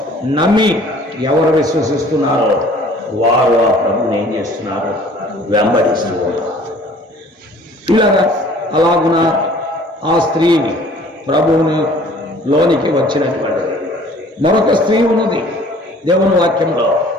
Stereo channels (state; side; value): normal; both; correlation 0.52